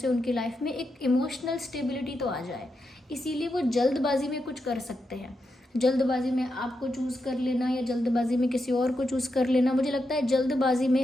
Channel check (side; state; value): both; normal; correlation 0.85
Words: उनकी लाइफ में एक इमोशनल स्टेबिलिटी तो आ जाए। इसीलिए वो जल्दबाजी में कुछ कर सकते हैं। जल्दबाजी में आपको चूज़ कर लेना या जल्दबाजी में किसी और को चूज़ कर लेना, मुझे लगता है जल्दबाजी